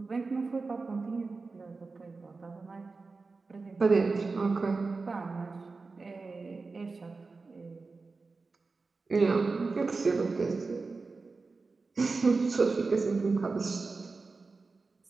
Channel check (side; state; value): left; quieter; 4.0 dB